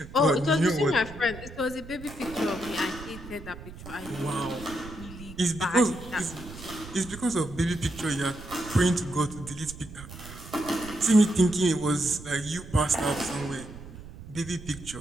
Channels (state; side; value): noise; right; rumble, 15 dB below the sound